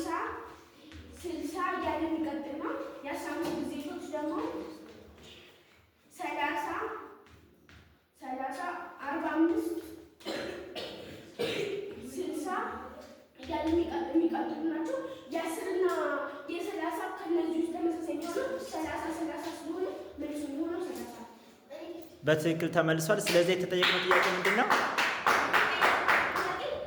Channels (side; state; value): both; identical; correlation 1.00